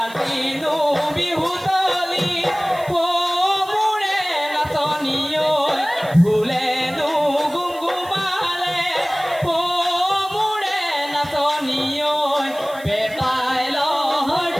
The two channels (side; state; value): right; noise; hiss, 21 dB below the sound